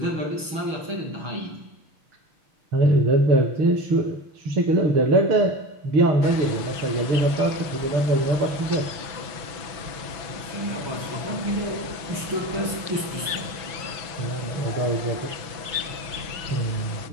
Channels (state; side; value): late; left; 6.1 ms